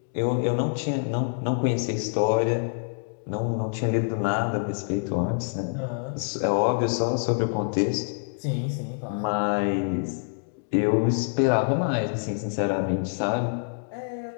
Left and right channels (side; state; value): right; silent; digital silence